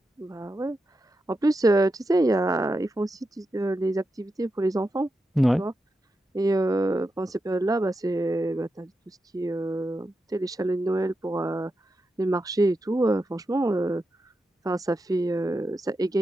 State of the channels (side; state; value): both; normal; correlation 0.88